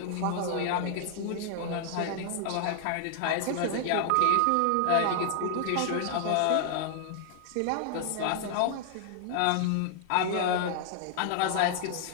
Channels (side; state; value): both; different; correlation -0.01